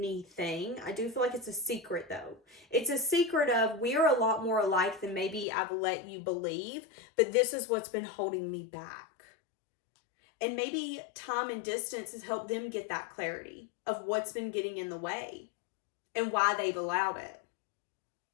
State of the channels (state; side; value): drops out; right; at 5.5 s